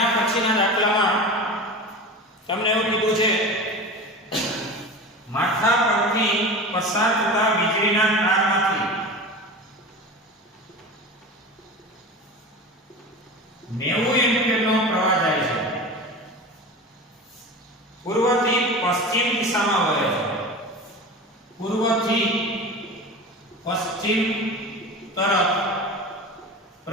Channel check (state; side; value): normal; both; correlation 0.31